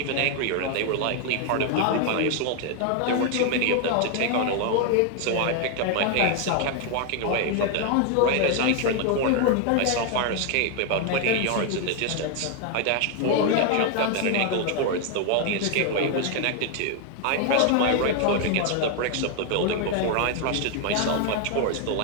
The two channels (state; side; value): different; both; correlation 0.00